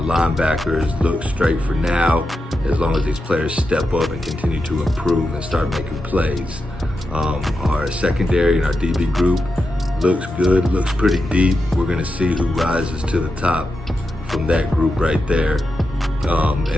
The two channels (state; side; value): normal; both; correlation 0.88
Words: look straight for now, as long as these players step up and continue to improve and start making plays. Our secondary and our DB group looks good, looks pretty deep. We're gonna see who rises to the top from that group right there.